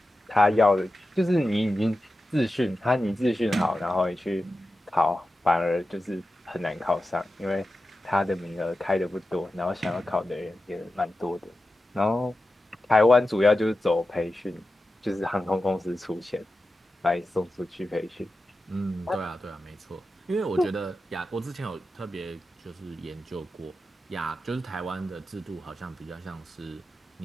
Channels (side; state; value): both; normal; correlation 0.92